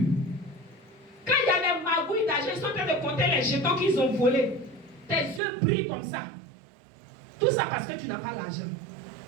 Quand il y a des magouilles d'argent, ils sont en train de compter les jetons qu'ils ont volés. Tes yeux brillent comme ça. Tout ça parce que tu n'as pas l'argent.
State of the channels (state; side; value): drops out; left; at 5.4 s